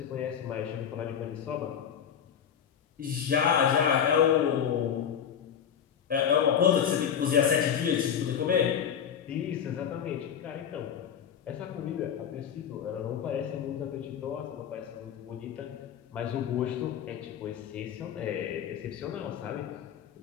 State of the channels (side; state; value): right; quieter; 8.4 dB